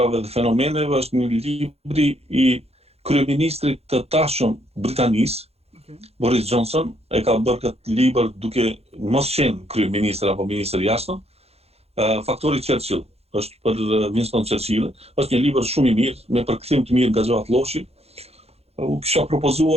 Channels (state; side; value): late; left; 0.30 ms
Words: dhe fenomeneve, është një libri i kryeministrit të tashëm Britanisë, Boris Johnson, e ka bërë këtë libër duke mos qenë kryeministër apo ministër jashtëm, Faktori Churchill, është për Winston Churchill, është një libër shumë i mirë, me përkthim të mirë nga Gjoat Lloshi. U kisha